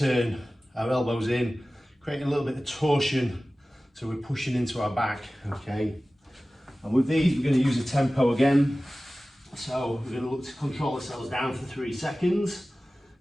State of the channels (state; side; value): normal; both; correlation 0.97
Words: our elbows in, creating a little bit of torsion, so we're pushing into our back, okay? And with these, we're going to use a tempo again. So we're going to look to control ourselves down for 3 seconds,